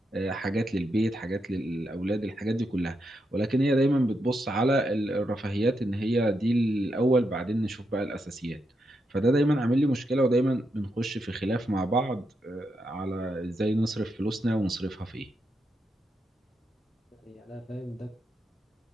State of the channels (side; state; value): both; normal; correlation 0.83